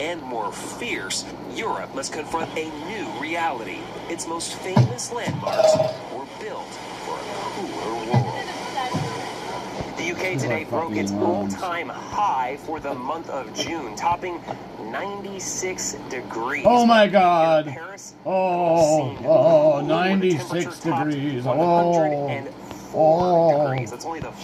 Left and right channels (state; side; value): identical; both; correlation 1.00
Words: more fierce, Europe must confront a new reality. Its most famous landmarks were built for a cooler world. The UK today broke its all-time high for the month of June, topping 96 degrees. Oh my God. Oh, 96 degrees. Oh. That's only the